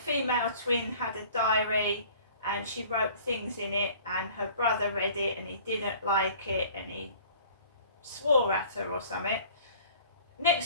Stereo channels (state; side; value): inverted; both; correlation -0.49